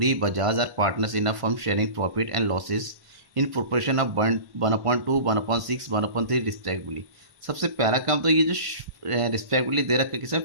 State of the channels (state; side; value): late; left; 1.5 ms